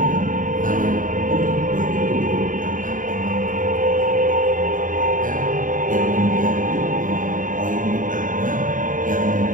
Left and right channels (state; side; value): late; left; 0.38 ms